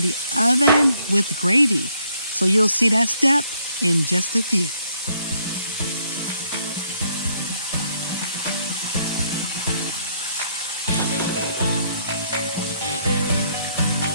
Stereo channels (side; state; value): both; inverted; correlation -0.70